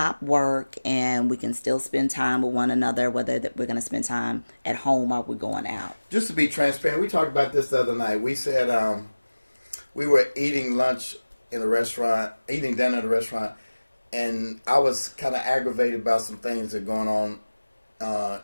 work and we can still spend time with one another, whether that we're going to spend time at home or we're going out. Just to be transparent, we talked about this the other night. We said we were eating lunch in a restaurant, eating dinner at a restaurant, and I was kind of aggravated about some things that are going on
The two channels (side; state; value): both; inverted; correlation -1.00